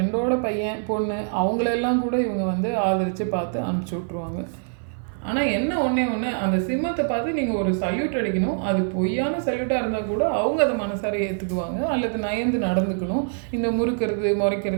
பையன் பொண்ணு அவங்களெல்லாம் கூட இவங்க வந்து ஆதரித்து பார்த்து அனுப்பிச்சி விட்ருவாங்க. ஆனால் என்ன ஒன்றே அந்த சிம்மத்தை பார்த்து நீங்கள் ஒரு சல்யூட் அடிக்கணும். அது பொய்யான சல்யூட்டாக இருந்தால் கூட அவங்க அதை மனசார ஏற்றுக்குவாங்க, அல்லது நயந்து நடந்துக்கணும். இந்த முறுக்கிறது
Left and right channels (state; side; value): silent; left; 56 dB below the other